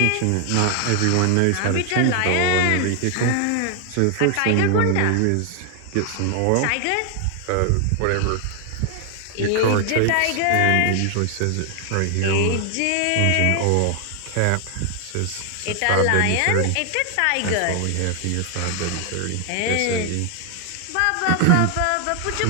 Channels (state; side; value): different; both; correlation 0.00